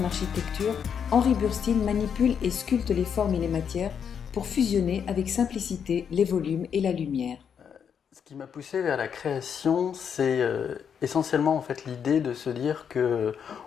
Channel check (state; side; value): quieter; right; 7.5 dB